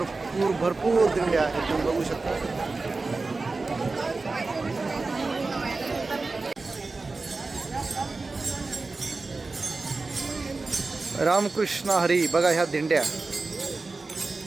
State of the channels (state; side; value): quieter; left; 3.7 dB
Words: भरपूर दिंड्या आहेत, तुम्ही बघू शकता. रामकृष्ण हरी. बघा ह्या दिंड्या